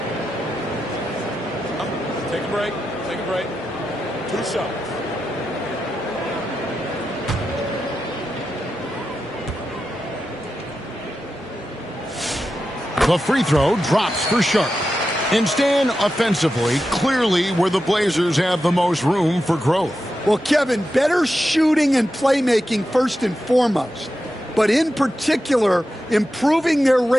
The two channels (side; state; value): both; normal; correlation 0.90